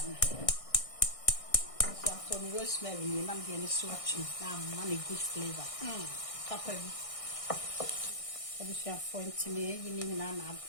So for me rosemary, and I'm getting swatching. Now, money good flavor. Pepper. I'm to me, you mean I'm a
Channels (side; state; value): right; late; 1.6 ms